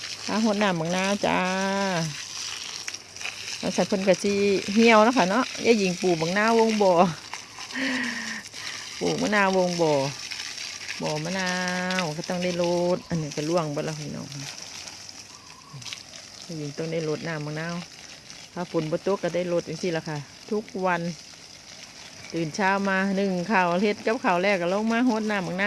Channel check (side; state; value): both; identical; correlation 1.00